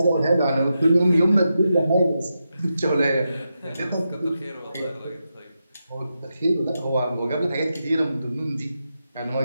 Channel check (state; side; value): inverted; both; correlation -0.88